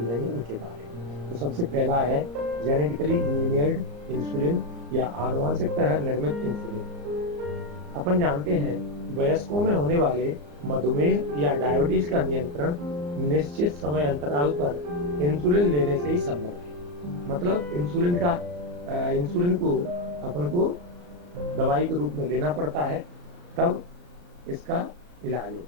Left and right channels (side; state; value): left; late; 34 ms